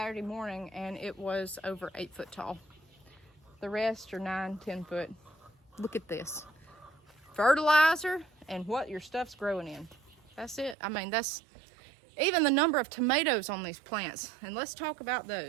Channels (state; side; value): drops out; left; at 10.8 s